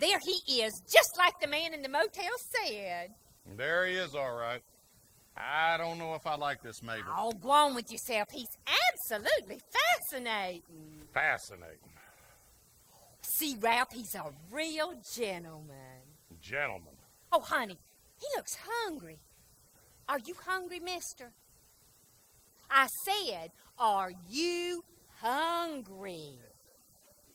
there he is, just like the man in the motel said. There he is, all right. I don't know if I like this, Mabel. Oh, go on with yourself. He's absolutely fascinating. Fascinating. See, Ralph, he's a real gentleman. Gentleman. Oh, honey, he looks hungry. Are you hungry, mister? I said, are you hungry?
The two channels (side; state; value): both; identical; correlation 1.00